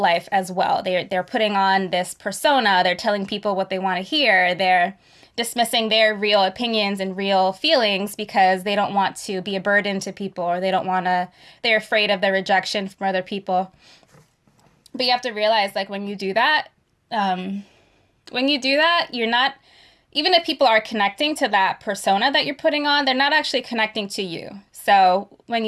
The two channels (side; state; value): both; identical; correlation 1.00